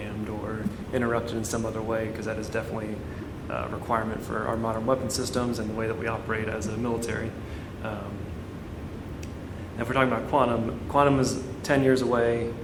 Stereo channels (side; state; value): both; identical; correlation 1.00